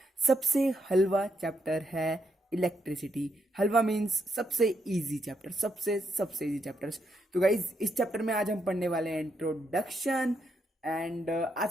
सबसे हलवा चैप्टर है इलेक्ट्रिसिटी। हलवा मीन्स सबसे इजी चैप्टर, सबसे सबसे इजी चैप्टर्स। तो गाइज इस चैप्टर में आज हम पढ़ने वाले हैं इंट्रोडक्शन। एंड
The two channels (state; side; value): normal; both; correlation 0.79